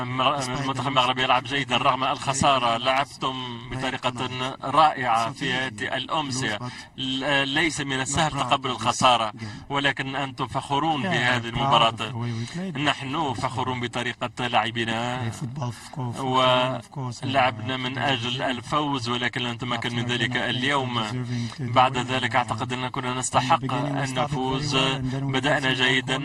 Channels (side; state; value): both; identical; correlation 1.00